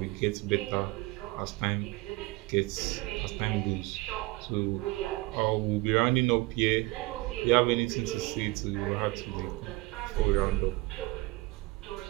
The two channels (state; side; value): quieter; left; 21.8 dB